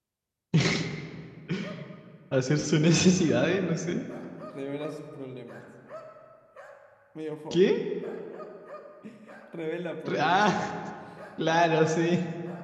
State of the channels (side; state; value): both; identical; correlation 1.00